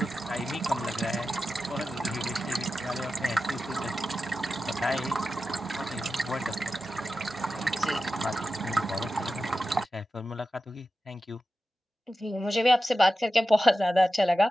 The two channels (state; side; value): normal; both; correlation 0.93